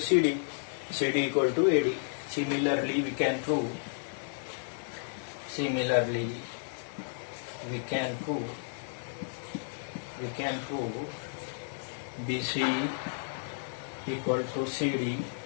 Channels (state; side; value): silent; right; digital silence